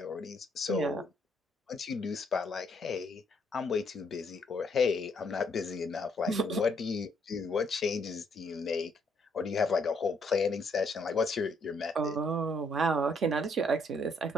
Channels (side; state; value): both; normal; correlation 0.70